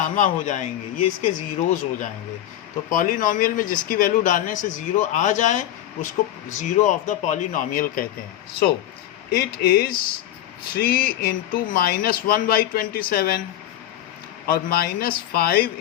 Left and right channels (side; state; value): right; quieter; 12.5 dB